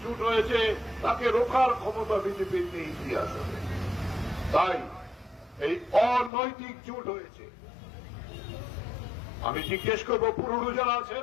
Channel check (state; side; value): drops out; right; at 6.3 s